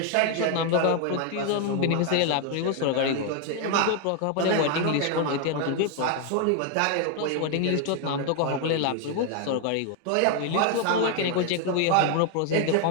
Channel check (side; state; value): both; different; correlation 0.01